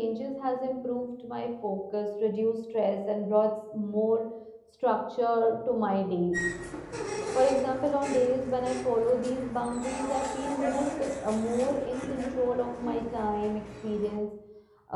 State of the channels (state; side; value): identical; both; correlation 1.00